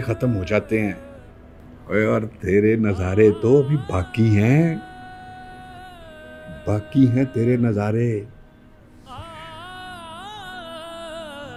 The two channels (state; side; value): identical; both; correlation 1.00